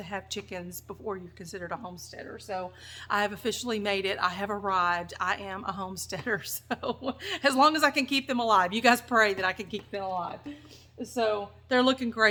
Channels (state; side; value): identical; both; correlation 1.00